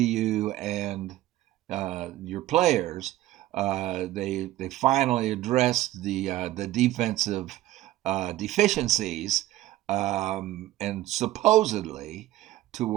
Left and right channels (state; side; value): quieter; left; 15.4 dB